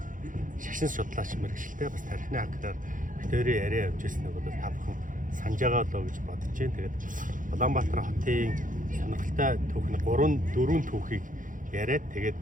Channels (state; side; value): late; left; 0.38 ms